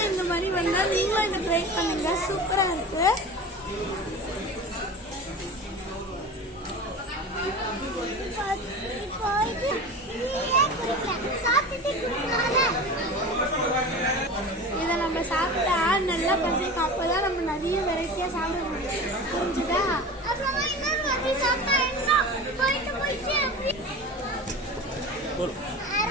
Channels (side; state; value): both; normal; correlation 0.32